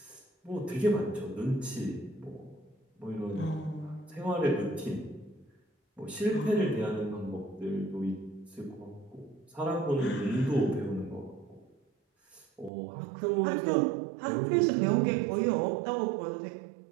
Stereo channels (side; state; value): left; drops out; at 12.7 s